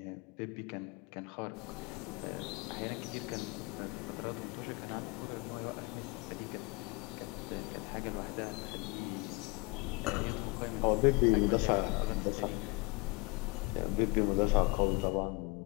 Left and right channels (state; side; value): quieter; right; 26.8 dB